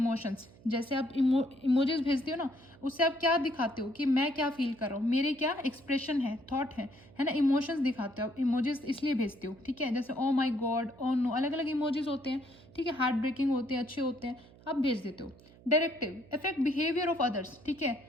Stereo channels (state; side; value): noise; right; hum, 23 dB below the sound